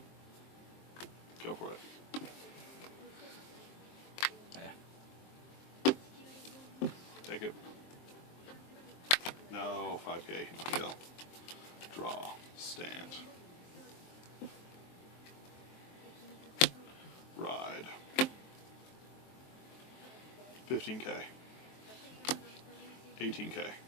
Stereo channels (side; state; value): right; late; 23 ms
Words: Go for it. Yeah. Take it. No, 5K. No deal. Draw. Stand. Ride. 15K. 18K.